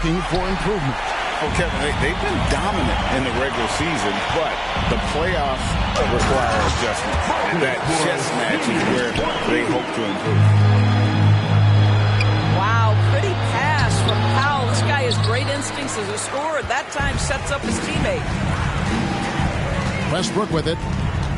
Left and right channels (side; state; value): both; identical; correlation 1.00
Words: for improvement? Well, Kevin, they've been dominant in the regular season, but the playoffs require adjustment. And that chess match is where they hope to improve. Wow, pretty pass from Powell. This guy has great instincts as a scorer. That time sets up his teammate. Westbrook with it.